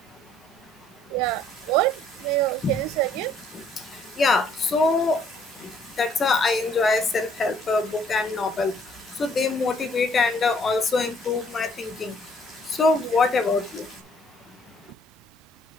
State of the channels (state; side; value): normal; both; correlation 0.63